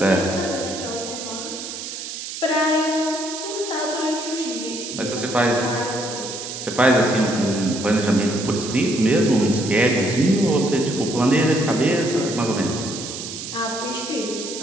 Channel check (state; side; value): noise; right; hiss, 8 dB below the sound